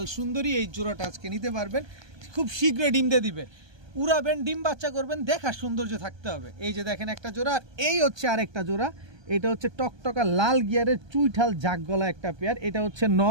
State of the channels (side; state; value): left; late; 1.3 ms